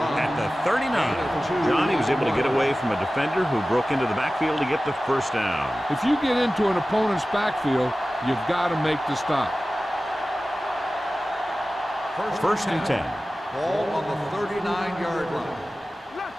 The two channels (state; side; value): normal; both; correlation 0.96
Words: at the 39. Johnny was able to get away from a defender who broke into the backfield to get the first down. If you get into an opponent's backfield, you've got to make the stop. First and 10. Ball on the 39-yard line.